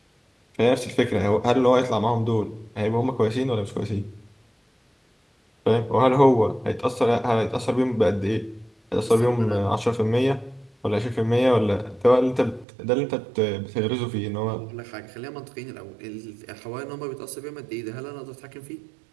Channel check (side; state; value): left; drops out; at 12.7 s